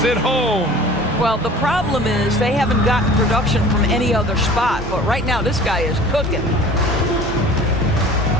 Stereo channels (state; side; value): normal; both; correlation 0.44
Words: it home. Well, the problem is they haven't gotten production from any other spot. But right now, this guy is cooking.